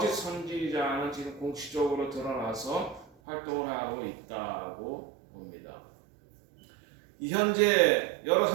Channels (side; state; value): left; drops out; at 3.1 s